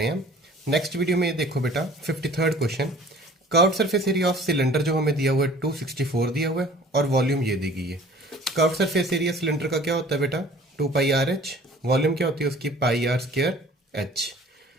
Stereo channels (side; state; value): both; normal; correlation 0.49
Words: हैं। नेक्स्ट वीडियो में ये देखो बेटा 53rd question. Curved surface area of cylinder जो हमें दिया हुआ है 264 दिया हुआ है और वॉल्यूम ये दी गई है। कर्व्ड सरफेस एरिया सिलेंडर का क्या होता है बेटा 2 पाई आर एच। वॉल्यूम क्या होती है उसकी पाई आर स्क्वायर एच।